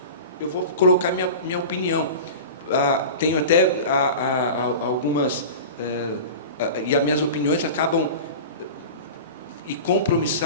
eu vou colocar minha opinião. Tenho até algumas, e as minhas opiniões acabam e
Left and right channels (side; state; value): both; inverted; correlation -0.32